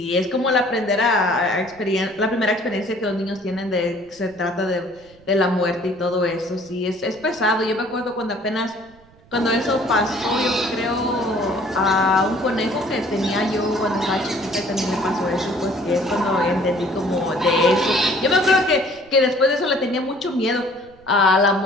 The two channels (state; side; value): noise; right; rumble, 27 dB below the sound